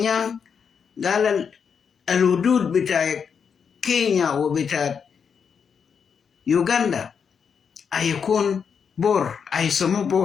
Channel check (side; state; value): right; quieter; 6.7 dB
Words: قال الحدود بتاع كينيا وبتاع يوغندا هيكون بور، هيسموه